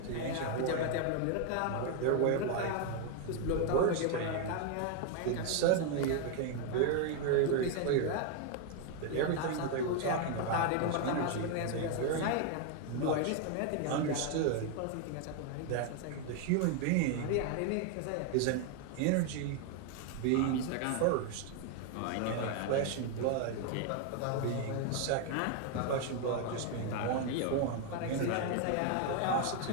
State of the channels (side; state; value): both; different; correlation 0.01